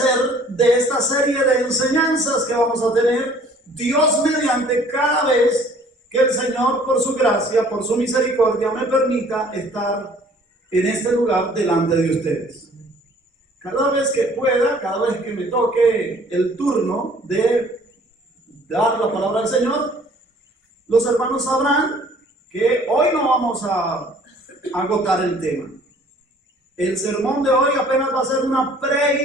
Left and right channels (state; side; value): normal; both; correlation 0.55